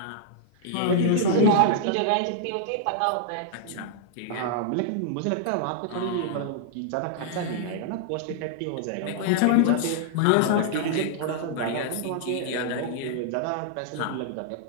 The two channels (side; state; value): both; different; correlation -0.01